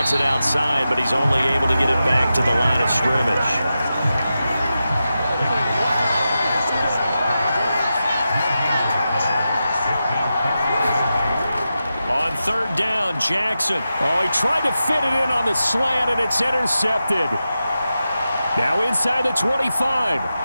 it outside, but he's only able to get it back to the line of scrimmage. On 3rd down, Jackson. Oh, he tried to fit it in on the slant, and it's intercepted. Now inside the 25.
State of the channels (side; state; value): both; inverted; correlation -0.91